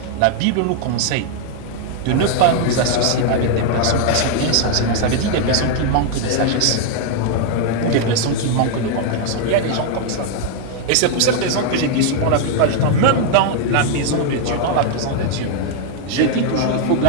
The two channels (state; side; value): different; both; correlation 0.00